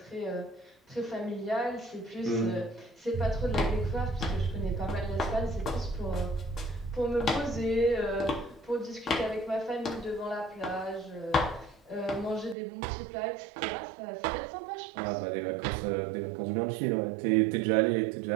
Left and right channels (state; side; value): drops out; left; at 12.6 s